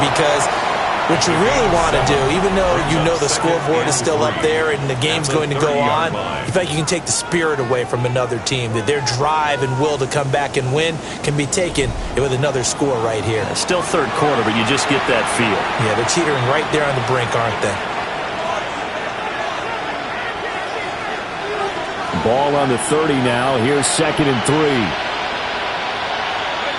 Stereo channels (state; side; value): identical; both; correlation 1.00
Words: because what you really want to do, even though you know the scoreboard is still up there and the game's going to go on, in fact, you can take the spirit away from another team, that their drive and will to come back and win can be taken with another score right here. It's still 3rd quarter, but you just get that feel. Yeah, they're teetering right there on the brink, aren't they? Ball on the 30 now. Here's 2nd and 3.